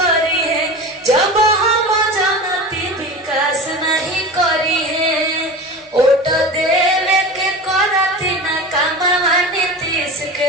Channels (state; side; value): normal; both; correlation 0.30